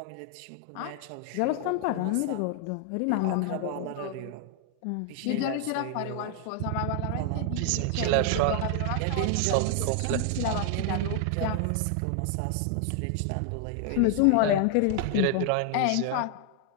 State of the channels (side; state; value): both; different; correlation 0.00